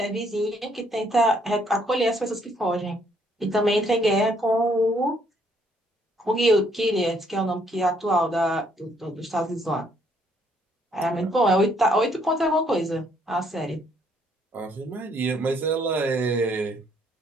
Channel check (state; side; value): normal; both; correlation 0.68